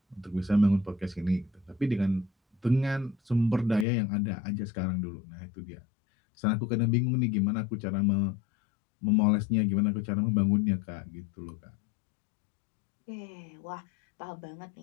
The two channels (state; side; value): drops out; right; at 3.9 s